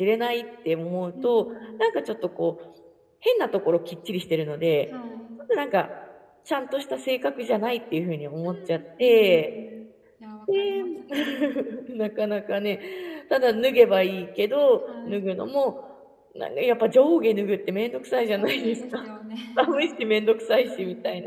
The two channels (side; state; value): both; identical; correlation 1.00